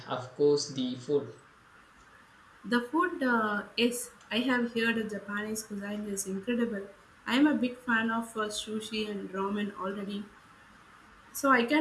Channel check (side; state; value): both; identical; correlation 1.00